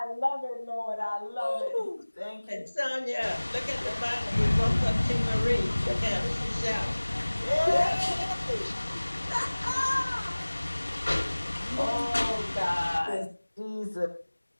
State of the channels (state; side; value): inverted; both; correlation -1.00